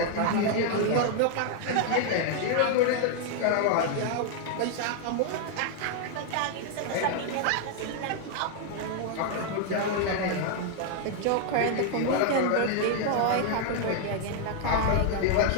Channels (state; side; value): different; both; correlation 0.00